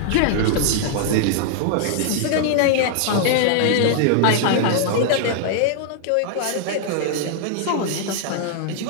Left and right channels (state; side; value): different; both; correlation -0.01